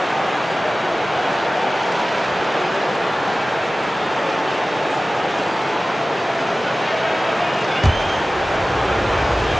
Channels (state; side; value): normal; both; correlation 0.97